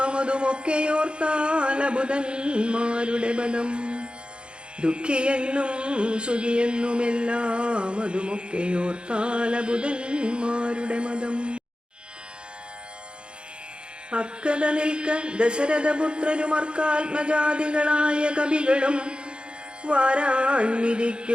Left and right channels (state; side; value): late; left; 0.053 ms